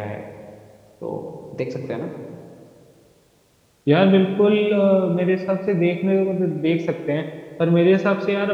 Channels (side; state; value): both; identical; correlation 1.00